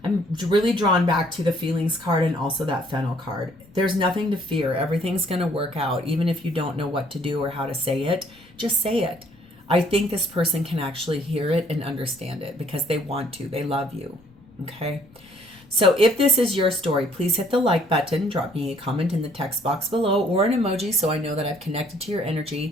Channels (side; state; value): left; noise; rumble, 28 dB below the sound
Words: I'm really drawn back to the feelings card and also that fennel card. There's nothing to fear. Everything's going to work out. Even if you don't know what to do or how to say it, just say it. I think this person can actually hear it and understand it because they want to. They love you. Okay. So if this is your story, please hit the like button, drop me a comment in the text box below or an emoji so I know that I've connected to your